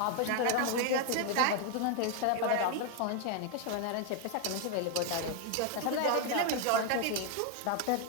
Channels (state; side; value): different; both; correlation 0.01